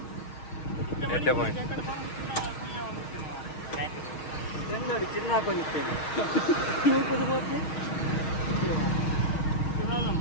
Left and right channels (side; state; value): right; late; 6.4 ms